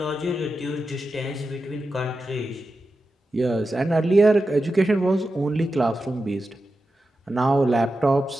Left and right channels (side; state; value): both; normal; correlation 0.91